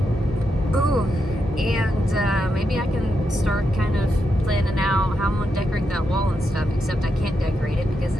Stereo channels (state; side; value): normal; both; correlation 0.84